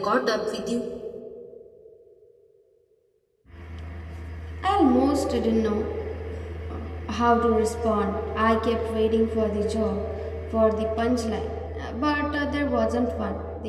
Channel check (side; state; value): both; identical; correlation 1.00